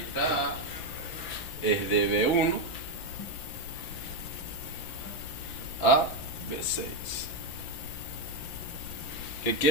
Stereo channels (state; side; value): late; right; 5.7 ms